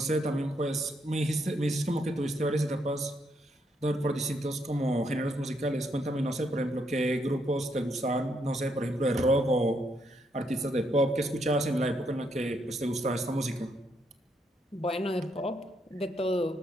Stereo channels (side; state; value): both; normal; correlation 0.76